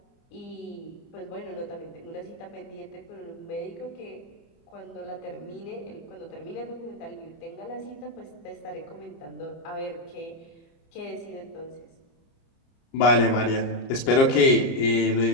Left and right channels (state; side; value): late; right; 30 ms